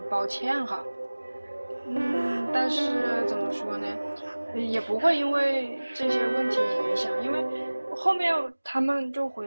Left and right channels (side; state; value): both; inverted; correlation -1.00